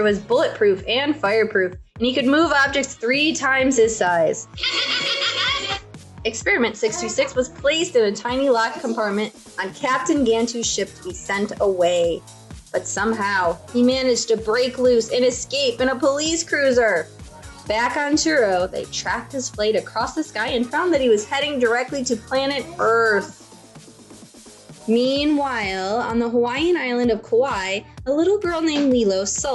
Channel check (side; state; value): both; identical; correlation 1.00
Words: was bulletproof and fireproof, and he could move objects 3 times his size. Experiment 626 was placed in a tiny locked compartment on Captain Gantu's ship to be sent away. But somehow, he managed to break loose and escape in a police cruiser. Back on Churro, they tracked his flight across the sky and found that he was heading directly to planet Earth. Meanwhile, on the Hawaiian island of Kauai, a little girl named Lilo